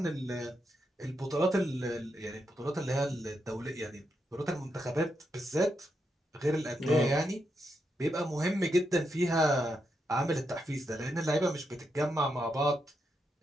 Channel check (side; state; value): both; normal; correlation 0.83